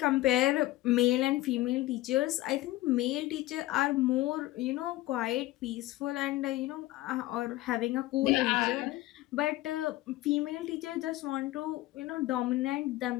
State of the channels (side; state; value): right; quieter; 17.3 dB